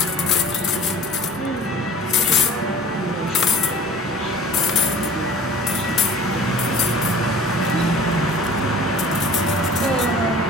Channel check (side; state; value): both; normal; correlation 0.44